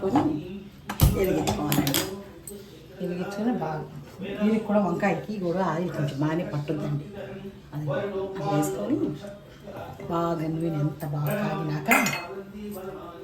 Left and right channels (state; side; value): identical; both; correlation 1.00